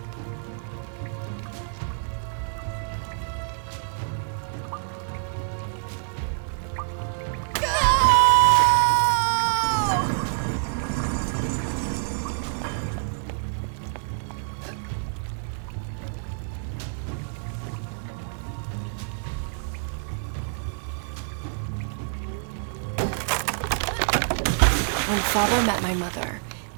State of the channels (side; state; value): left; silent; digital silence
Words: When Father met my mother,